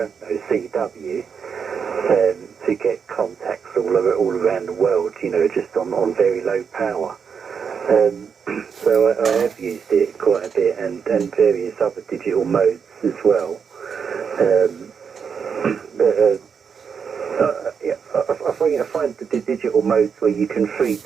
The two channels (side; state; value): left; quieter; 6.5 dB